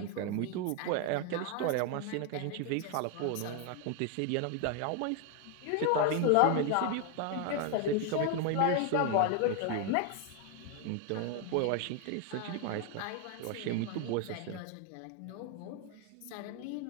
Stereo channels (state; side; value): different; both; correlation 0.01